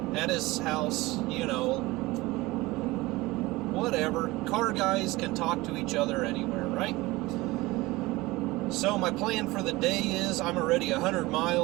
at his house, you know. Whatever. Car guys can talk to each other anywhere, right? So my plan for the day is, I'm already 100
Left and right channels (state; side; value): quieter; left; 20.5 dB